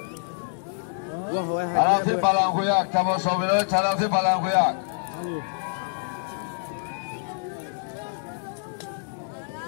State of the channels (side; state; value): right; silent; digital silence